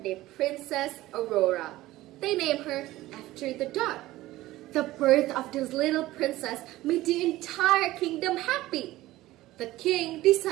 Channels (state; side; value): quieter; left; 16.8 dB